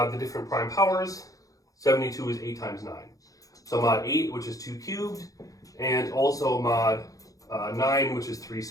the different prime powers. 72 is 8 times 9. So mod 8, which is 2 cubed, and also mod 9, which is 3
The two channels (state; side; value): late; right; 0.17 ms